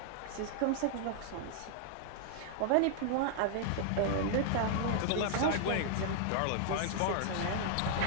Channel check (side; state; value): both; different; correlation 0.00